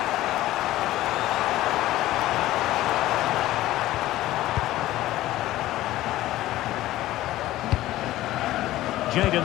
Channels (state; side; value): quieter; right; 15.5 dB